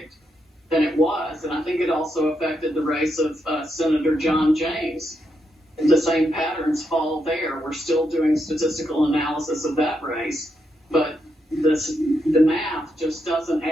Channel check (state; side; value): normal; both; correlation 0.81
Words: than it was, and I think it also affected the race of Senator John James. The same patterns fall there. We're still doing statistical analysis of that race, but the math just doesn't